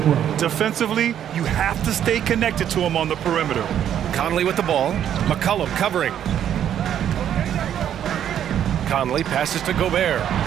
Defensively, you have to stay connected to him on the perimeter. Conley with the ball. McCollum covering. Conley passes to Gobert.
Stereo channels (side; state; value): left; quieter; 10.0 dB